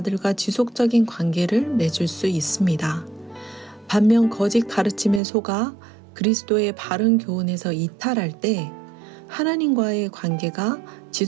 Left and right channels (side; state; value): left; drops out; at 5.2 s